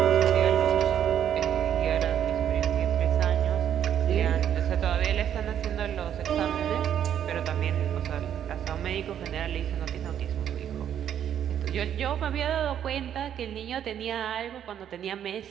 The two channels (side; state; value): left; quieter; 9.7 dB